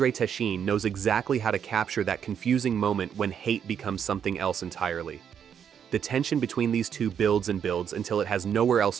Techin knows exactly how to capture that confusing moment when hate becomes something else entirely. The tension between these two builds and builds until it has nowhere else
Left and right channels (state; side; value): quieter; left; 8.1 dB